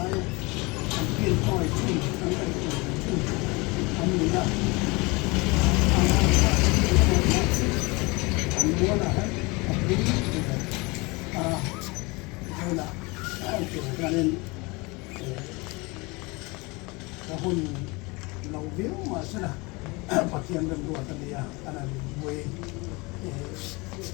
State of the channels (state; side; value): quieter; right; 25.9 dB